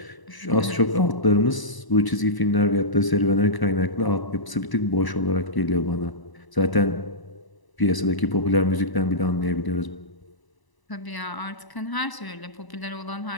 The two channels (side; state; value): right; late; 1.0 ms